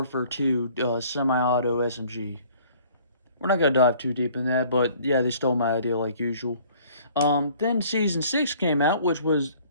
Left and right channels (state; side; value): inverted; both; correlation -0.55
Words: 2 semi-auto SMG. We're not going to dive too deep in that, but yeah, they stole my idea like usual. Then Season 6 came out, which was,